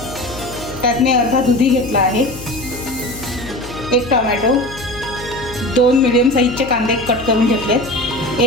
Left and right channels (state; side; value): noise; left; hum, 14 dB below the sound